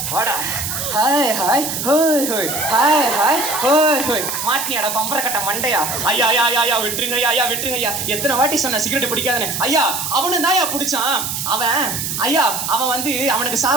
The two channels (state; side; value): noise; right; hiss, 3 dB below the sound